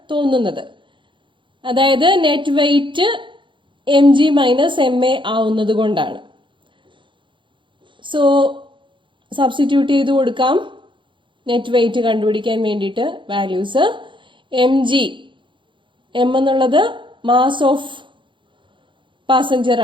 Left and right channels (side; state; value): left; late; 0.24 ms